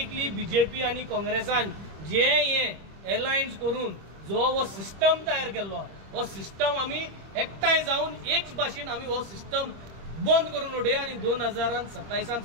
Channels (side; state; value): left; late; 25 ms